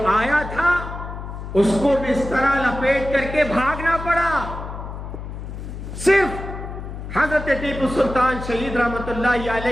آیا تھا اس کو بھی اس طرح لپیٹ کر کے بھاگنا پڑا۔ صرف حضرت ٹیپو سلطان شہید رحمت اللہ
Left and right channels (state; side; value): noise; left; hum, 9 dB below the sound